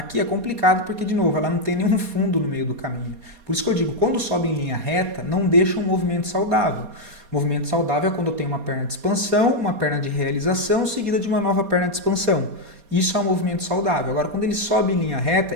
é complicado porque, de novo, ela não tem nenhum fundo no meio do caminho. Por isso que eu digo, quando sobe em linha reta, não deixa um movimento saudável. Movimento saudável é quando eu tenho uma perna de expansão, uma perna de realização, seguida de uma nova perna de expansão. Isso é um movimento saudável. Agora, quando ele sobe em linha reta,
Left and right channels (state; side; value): late; left; 4.2 ms